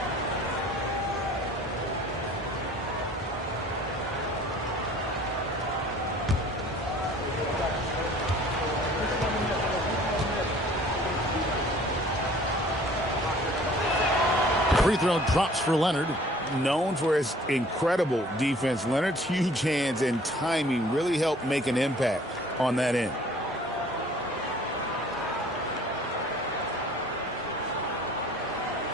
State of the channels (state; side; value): normal; both; correlation 0.52